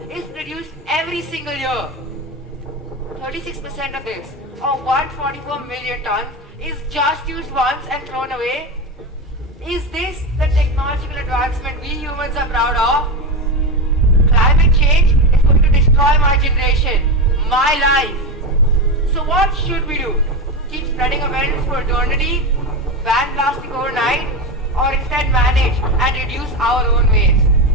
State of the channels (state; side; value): normal; both; correlation 0.18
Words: is produced every single year. 36% of this, or 144 million tons, is just used once and thrown away. Is this the technological advancement we humans are proud of? Climate change is going to destroy my generation, my life. So what should we do? Keep spreading awareness for eternity? Ban plastic overnight? Or instead manage and reduce our own waste?